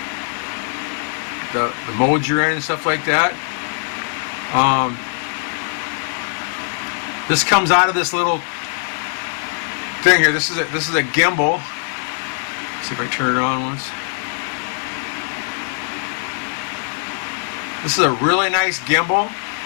modes you're in and stuff like that. This comes out of this little thing here. This is a gimbal. Let's see if I turn it on once. This is a really nice gimbal.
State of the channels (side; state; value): right; silent; 65 dB below the other